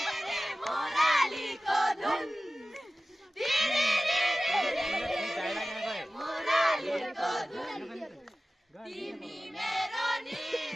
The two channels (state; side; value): normal; both; correlation 0.96